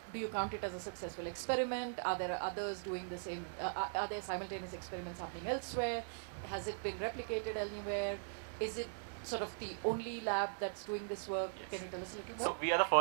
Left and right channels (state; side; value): silent; left; digital silence